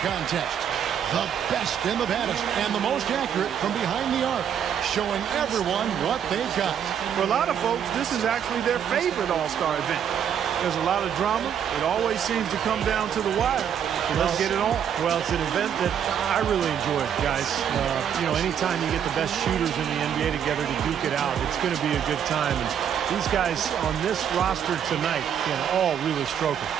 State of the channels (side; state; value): left; quieter; 8.7 dB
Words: contest. The best and the baddest and the most accurate from behind the arc, showing everyone what they've got. For a lot of folks, this is actually their favorite All-Star event. There's a lot of drama. It always seems to come down to the wire. So let's get it on. Well, it's an event that I really enjoy, guys. Anytime you get the best shooters in the NBA together to duke it out, it's going to be a good time. And these guys on this roster tonight can all really stroke it.